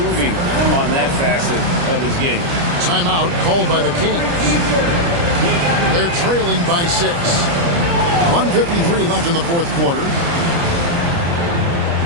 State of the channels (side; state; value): left; late; 29 ms